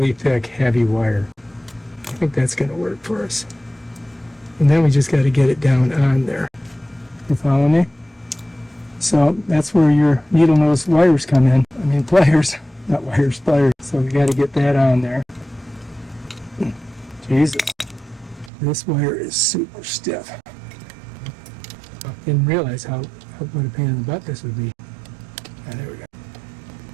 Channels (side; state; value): left; drops out; at 18.5 s